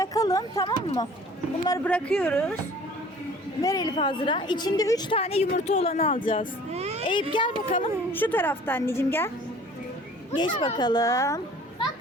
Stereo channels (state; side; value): normal; both; correlation 0.49